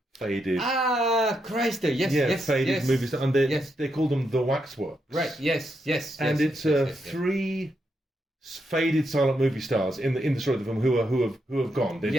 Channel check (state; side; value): normal; both; correlation 0.82